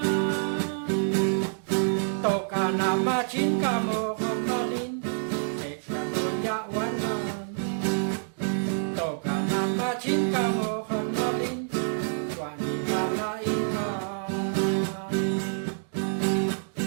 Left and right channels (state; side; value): silent; left; digital silence